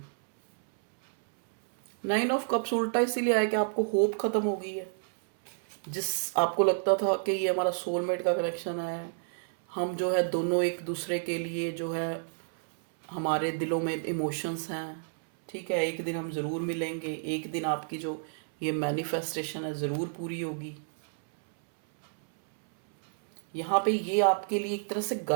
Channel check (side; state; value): left; silent; 58 dB below the other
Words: 9 ऑफ कप्स उल्टा इसीलिए आया कि आपको होप खत्म हो गई है। जिस आपको लगता था कि ये हमारा सोलमेट का कनेक्शन है, हम जो है दोनों एक दूसरे के लिए जो है, हमारे दिलों में इमोशंस हैं, ठीक है, एक दिन हम ज़रूर मिलेंगे, एक दिन आपकी जो ये मैनिफेस्टेशन है ज़रूर पूरी होगी। यहाँ पे ये आपके लिए एक तरह से